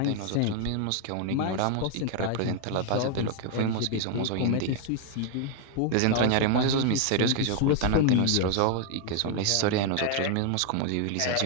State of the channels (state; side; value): different; both; correlation 0.00